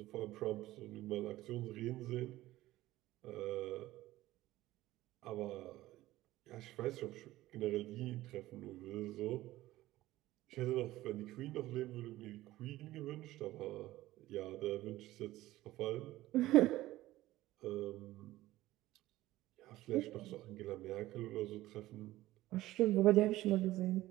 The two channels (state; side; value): quieter; left; 16.4 dB